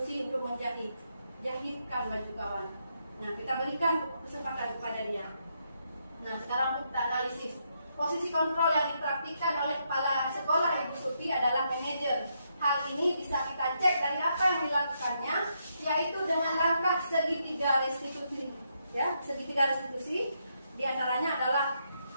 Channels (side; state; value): both; inverted; correlation -0.79